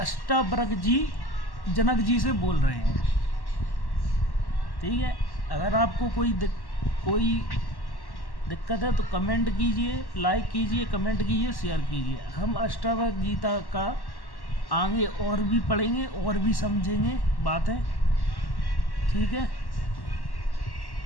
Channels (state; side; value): late; right; 1.1 ms